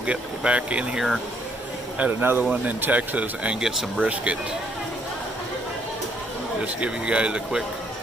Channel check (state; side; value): normal; both; correlation 0.69